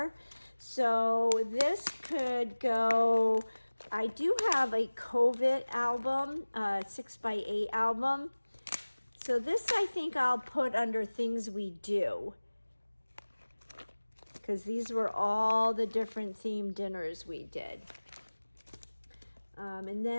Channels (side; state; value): both; inverted; correlation -1.00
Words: So this could go I do have a COVID album, 6x8 album. So this I think I'll put under things we do, because these were all the different themed dinners we did. And